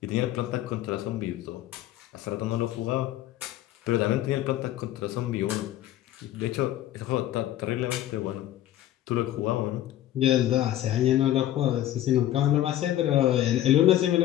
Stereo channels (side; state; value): right; quieter; 13.2 dB